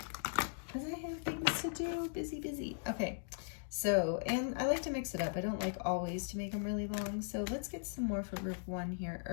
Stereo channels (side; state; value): right; silent; digital silence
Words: because I have things to do. Busy. Okay, so, and I like to mix it up. I don't like always to make them really long. So let's get some more for group 1 here.